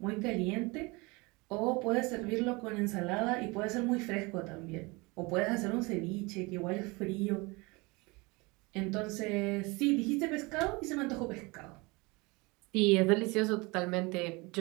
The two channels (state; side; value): quieter; left; 25.7 dB